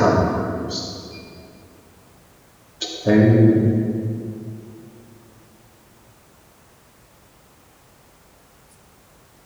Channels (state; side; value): identical; both; correlation 1.00